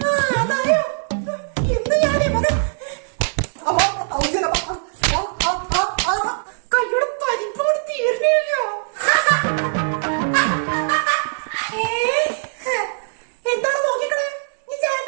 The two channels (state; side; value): silent; left; digital silence